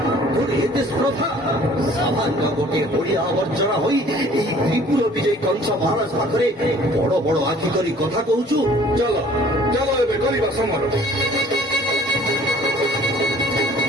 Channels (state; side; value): normal; both; correlation 0.53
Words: তোর এতে স্পর্ধা সামান্য গোটিଏ ଓଡ଼ିଆ ଆବର୍ଜନା ହୋଇ ଏହି ତ୍ରିପୁର ବିଜୟୀ କଂସ ମହାରାଜ ପାଖରେ ବଡ ବଡ ଆଖି କରି କଥା କହୁଛୁ। ଚାଲ ଚାଲ ଏବେ କରିବା ସମର।